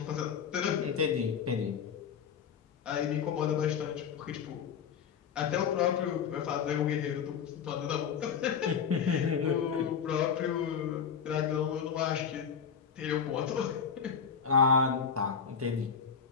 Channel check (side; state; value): right; quieter; 6.9 dB